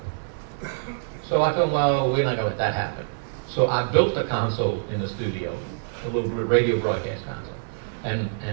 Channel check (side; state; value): left; silent; digital silence